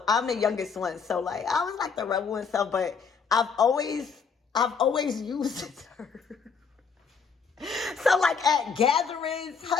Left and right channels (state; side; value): quieter; right; 5.8 dB